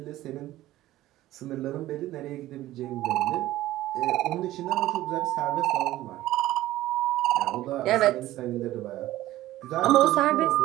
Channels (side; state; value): left; quieter; 15.4 dB